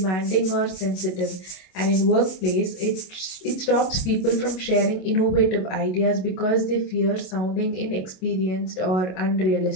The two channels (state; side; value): late; right; 27 ms